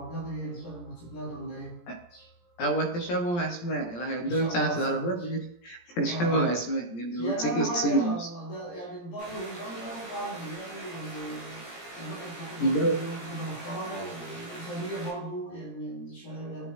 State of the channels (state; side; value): late; right; 17 ms